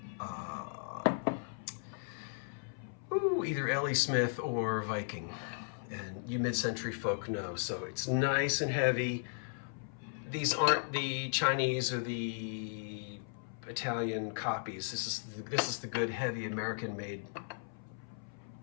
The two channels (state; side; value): silent; right; 54 dB below the other